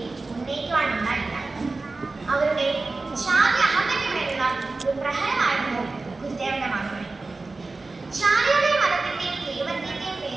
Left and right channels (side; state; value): left; quieter; 3.5 dB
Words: ഉന്നയിക്കുവാനുണ്ടായില്ല. അവരുടെ ജാതി അഹന്തയ്ക്ക് മേലുള്ള ഒരു പ്രഹരമായിരുന്നു ഗുരുദേവന്റെ മറുപടി. ജാതിയുടെയും മതത്തിന്റെയും ദൈവത്തിന്റെയും